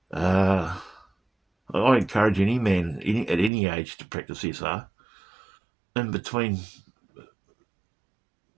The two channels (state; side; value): drops out; left; at 3.5 s